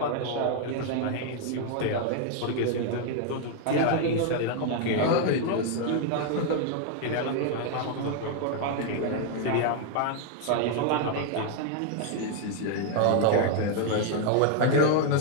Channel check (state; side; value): different; both; correlation 0.00